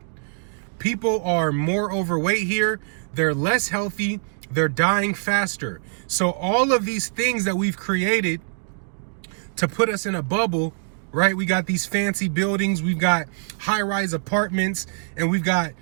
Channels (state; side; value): silent; left; digital silence